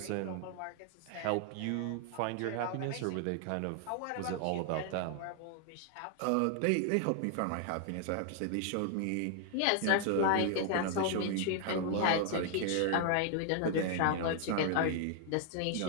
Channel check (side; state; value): both; different; correlation 0.00